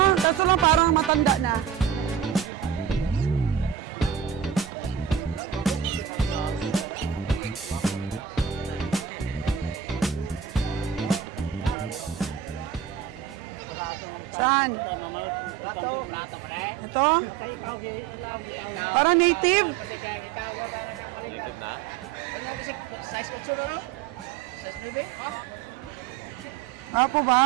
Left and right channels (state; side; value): quieter; left; 8.3 dB